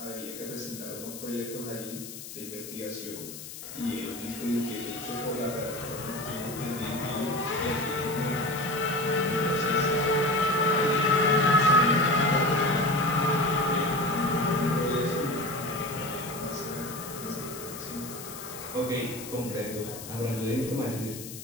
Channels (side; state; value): left; noise; hiss, 12 dB below the sound